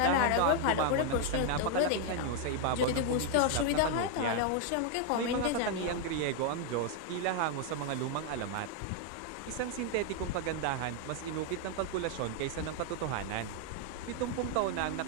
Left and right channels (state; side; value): different; both; correlation 0.00